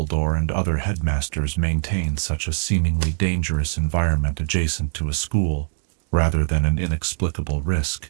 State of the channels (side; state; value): left; silent; digital silence